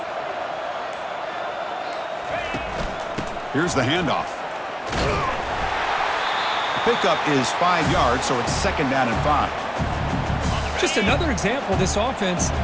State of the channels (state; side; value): identical; both; correlation 1.00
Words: Here's the handoff. Pickup is 5 yards, so it's 2nd down and 5. Just another example of this offense,